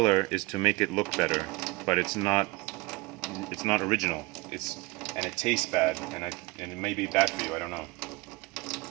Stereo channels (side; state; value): left; quieter; 23.2 dB